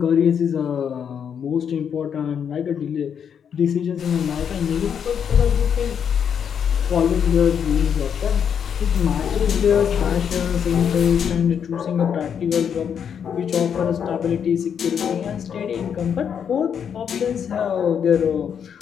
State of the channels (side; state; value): right; quieter; 7.8 dB